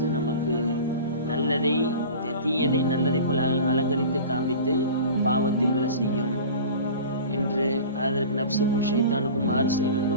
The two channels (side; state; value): both; inverted; correlation -0.37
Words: நமக்கு நல்லதை தீயதை நல்லதை போல் அலங்கரித்து காண்பித்து பாவத்தில் விழ செய்யும் என்று, அதற்கு நப்சுக்கும் ஷைத்தானுக்கும் மாறு செய்ய